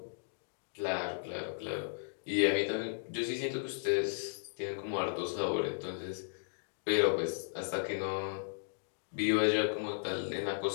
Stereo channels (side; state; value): right; silent; digital silence